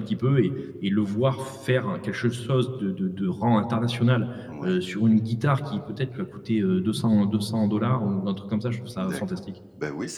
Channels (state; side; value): identical; both; correlation 1.00